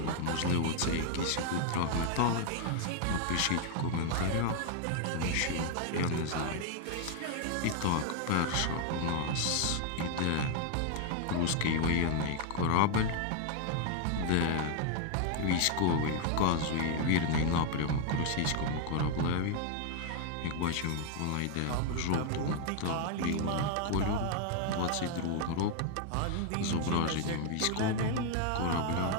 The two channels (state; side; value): different; both; correlation 0.00